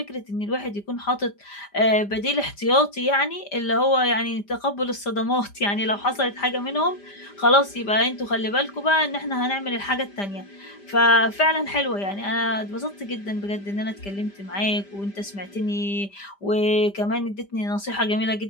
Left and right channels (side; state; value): right; late; 5.0 ms